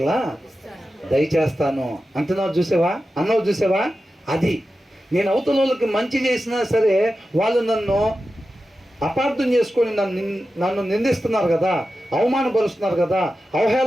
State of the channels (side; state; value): both; normal; correlation 0.92